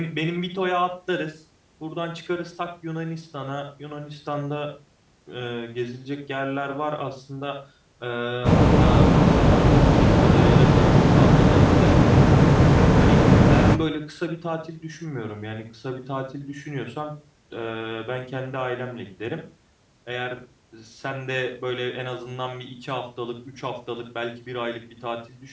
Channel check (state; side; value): identical; both; correlation 1.00